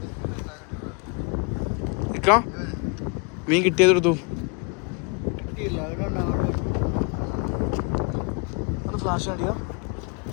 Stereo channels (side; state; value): right; quieter; 32.9 dB